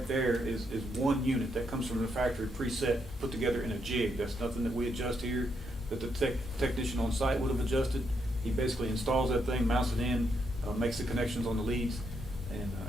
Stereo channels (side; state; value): both; normal; correlation 0.78